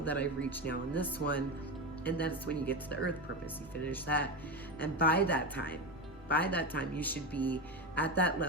that I've reached now in this one. And that's when you get to the earth purpose. You finish that. And by that time, you should be at that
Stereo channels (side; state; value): both; normal; correlation 0.18